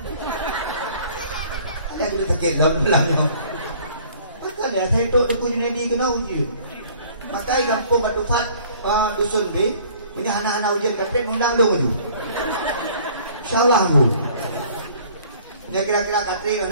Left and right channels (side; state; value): both; inverted; correlation -0.54